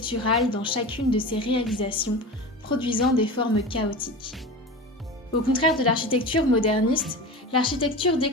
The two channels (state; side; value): normal; both; correlation 0.29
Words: dans chacune de ses réalisations, produisant des formes chaotiques. Au contraire de l'architecture moderniste, l'architecture